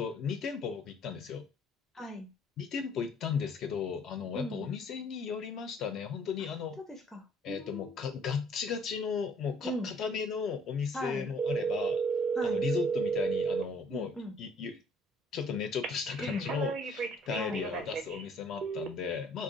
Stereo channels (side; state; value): both; normal; correlation 0.60